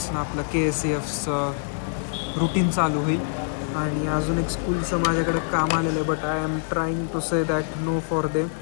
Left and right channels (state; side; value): silent; right; digital silence